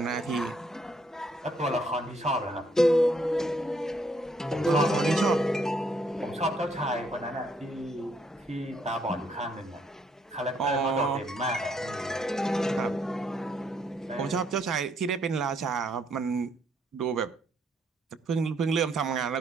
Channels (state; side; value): normal; both; correlation 0.71